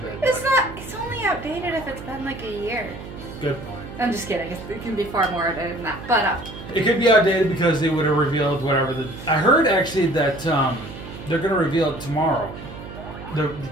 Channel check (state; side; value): noise; right; hum, 12 dB below the sound